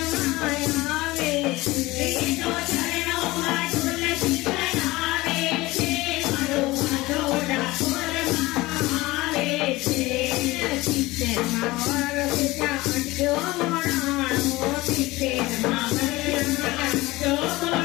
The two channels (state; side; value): quieter; right; 20.0 dB